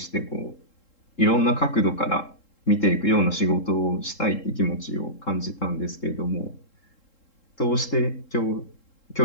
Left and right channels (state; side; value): late; right; 3.7 ms